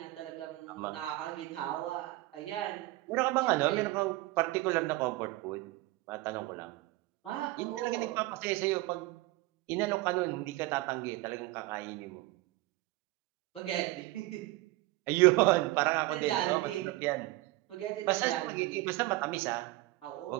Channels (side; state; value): left; quieter; 19.3 dB